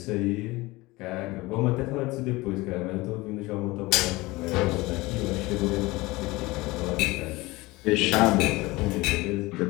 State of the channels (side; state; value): right; quieter; 21.3 dB